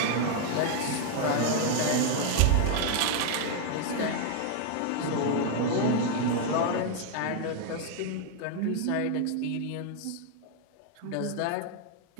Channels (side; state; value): both; different; correlation 0.00